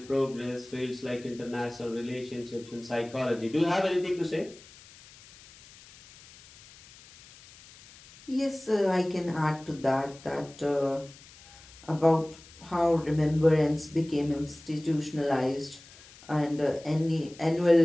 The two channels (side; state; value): left; noise; hiss, 22 dB below the sound